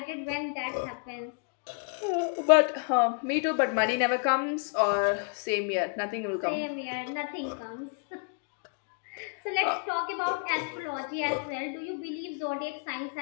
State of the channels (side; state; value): right; quieter; 40.0 dB